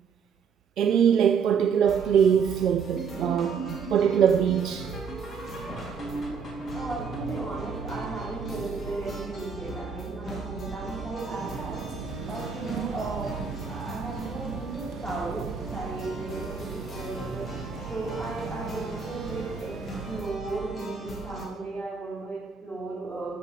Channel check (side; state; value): left; quieter; 6.2 dB